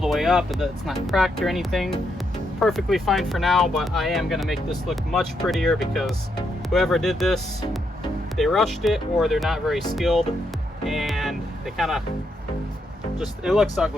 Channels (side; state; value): both; normal; correlation 0.79